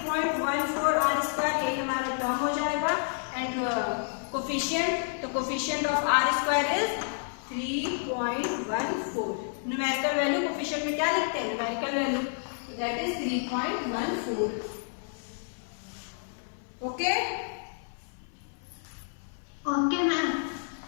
r स्क्वायर, यही हमारा टर्म हो जाएगा। एंड कोफिशिएंट, तो coefficient of r square is 3.14। Numerical value coefficient में क्या लिखते हैं? Numerical value, that is 3.14। Okay okay ma'am.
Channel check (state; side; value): silent; right; 56 dB below the other